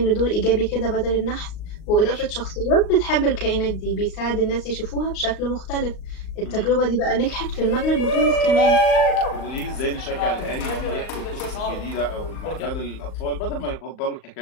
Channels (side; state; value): right; late; 38 ms